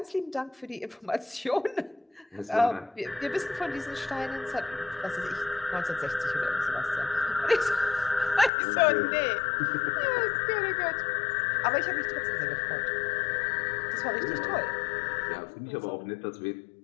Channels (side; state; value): right; drops out; at 8.5 s